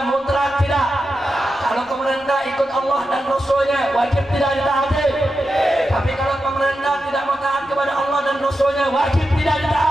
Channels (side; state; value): both; normal; correlation 0.89